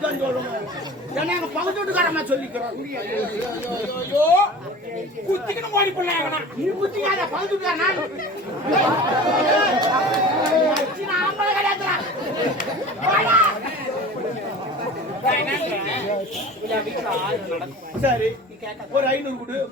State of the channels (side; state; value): both; normal; correlation 0.38